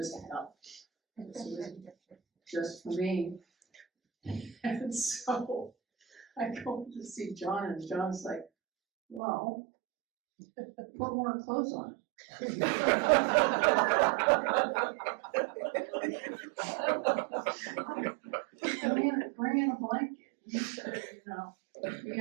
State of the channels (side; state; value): left; drops out; at 9.2 s